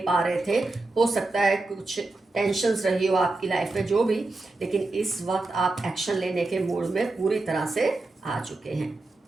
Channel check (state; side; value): quieter; left; 3.1 dB